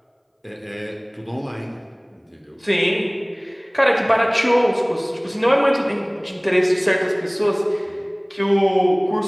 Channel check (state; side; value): identical; both; correlation 1.00